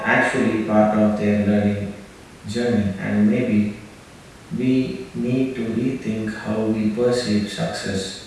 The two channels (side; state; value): both; identical; correlation 1.00